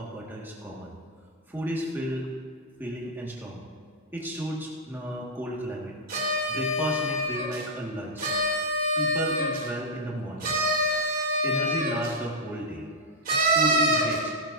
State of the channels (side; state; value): both; normal; correlation -0.04